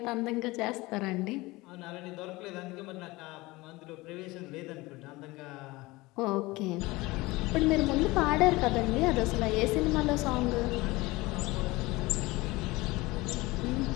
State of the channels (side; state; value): right; quieter; 21.3 dB